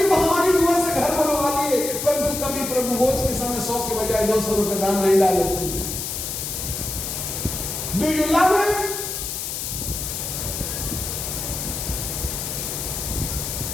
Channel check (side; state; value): left; noise; hiss, 4 dB below the sound